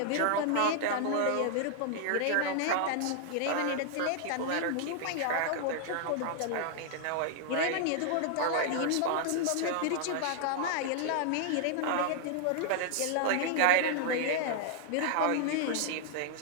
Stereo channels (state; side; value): different; both; correlation 0.00